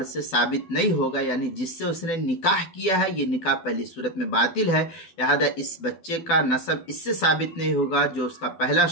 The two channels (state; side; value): late; right; 12 ms